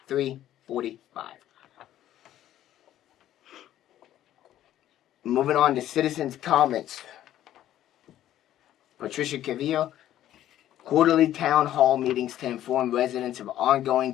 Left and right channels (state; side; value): quieter; right; 12.5 dB